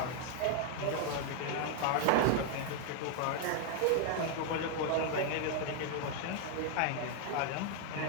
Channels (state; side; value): different; both; correlation 0.00